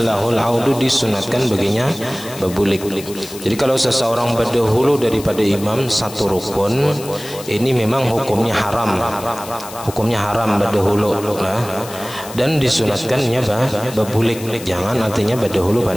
lahul audu, disunatkan baginya babulik. Jadi kalau seseorang berdahulu daripada imam satu rukun, ini memang hukumnya haram, berdahulu nah, dan disunatkannya babulik, jangan artinya berdahulu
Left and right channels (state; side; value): noise; left; hiss, 15 dB below the sound